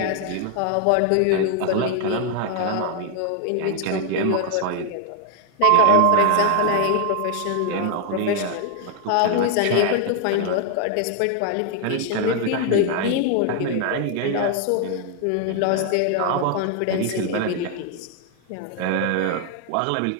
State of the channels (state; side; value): different; both; correlation 0.00